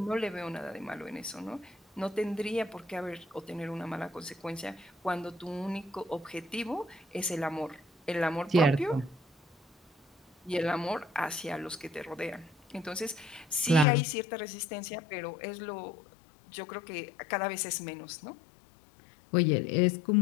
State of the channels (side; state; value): right; drops out; at 13.9 s